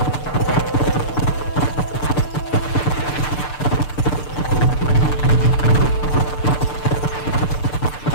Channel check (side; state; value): right; late; 6.7 ms